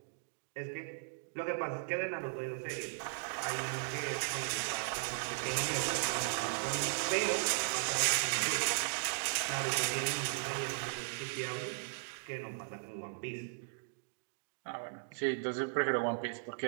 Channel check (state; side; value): silent; left; digital silence